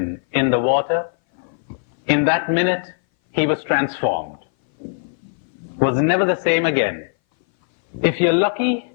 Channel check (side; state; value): right; silent; 60 dB below the other